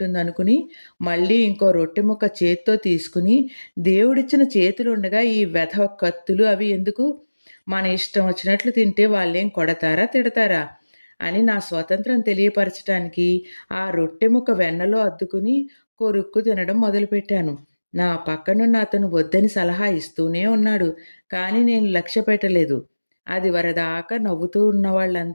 మళ్ళీ ఇంకో రొట్టె ముక్క చేత్తో తీసుకుని, దేవుడిచ్చిన చేతులుండగా ఈ వెధవ కత్తులు అవి ఎందుకు? మన ఇష్టం వచ్చినట్లు తింటే వాళ్ళేం కొడతారా? తిడతారా? అని నా స్వతంత్రం తెలియపరచటానికి ఆ రొట్టె ముక్క వెన్నలో అద్దుకుని కొరుక్కు తినడం మొదలుపెట్టాను. నా పక్కనున్న అతను వద్దని సలహా ఇస్తూనే ఉన్నాడు. కానీ నేను లక్ష్య పెట్టలేదు. అది వరదాకా నవ్వుతూ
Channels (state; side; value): inverted; both; correlation -1.00